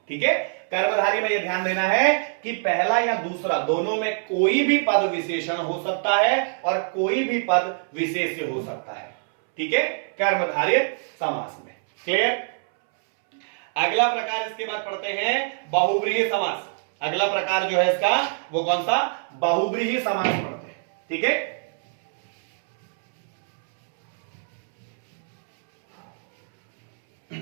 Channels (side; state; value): left; silent; 63 dB below the other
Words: ठीक है, कर्मधारय में यह ध्यान देना है कि पहला या दूसरा दोनों में कोई भी पद विशेषण हो सकता है और कोई भी पद विशेष्य हो सकता है। ठीक है, कर्मधारय समास में। क्लियर। अगला प्रकार इसके बाद पढ़ते हैं बहुब्रीही समास। अगला प्रकार जो है इसका वो कौन सा, बहुब्रीही समास पढ़ते हैं। ठीक है,